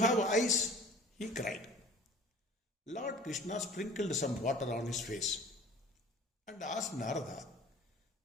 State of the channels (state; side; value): normal; both; correlation 0.45